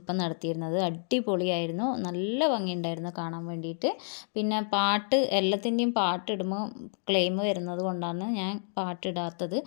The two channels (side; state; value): right; silent; 58 dB below the other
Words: നടത്തിയിരുന്നത്. അടിപൊളിയായിരുന്നു, നല്ല ഭംഗിയുണ്ടായിരുന്നു കാണാൻ വേണ്ടിയിട്ട്. പിന്നെ പാട്ട് എല്ലാത്തിൻ്റെയും പാട്ടിടുമ്പോൾ ക്ലെയിം വരുന്നത് കൊണ്ടാണ് ഞാൻ പാട്ടിടാത്തത്.